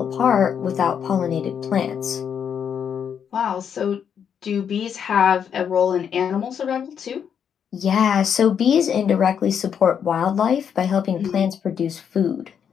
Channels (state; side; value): quieter; right; 7.8 dB